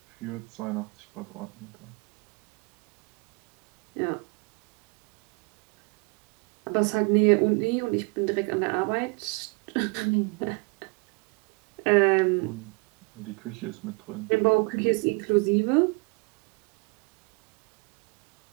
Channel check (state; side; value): quieter; left; 30.1 dB